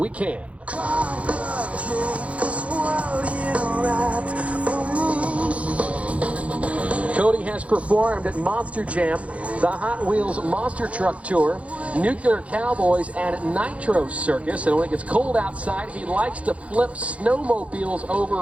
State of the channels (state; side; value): late; left; 0.064 ms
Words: can. Cody has performed at Monster Jam, the Hot Wheels Monster Truck Tour, Nuclear Cowboys, and Nitro Circus. And when it gets cold outside, he likes to flip snowmobiles